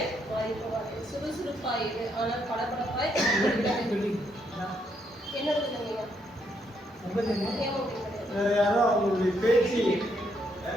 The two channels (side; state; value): both; normal; correlation 0.75